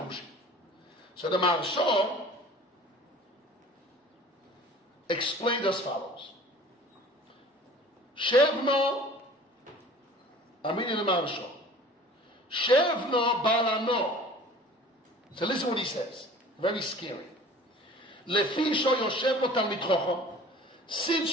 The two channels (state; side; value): normal; both; correlation 0.46